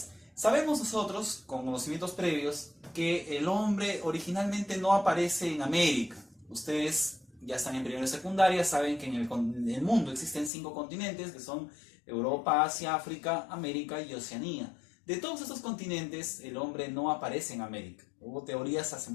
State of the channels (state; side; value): drops out; right; at 10.5 s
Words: Sabemos nosotros, con conocimientos previos, que el hombre originalmente no aparece en América. Ustedes ya están en primero y secundaria, saben que en el mundo existen 5 continentes, que son Europa, Asia, África, América y Oceanía. De todos estos continentes, el hombre no aparece en América. Hubo teorías hace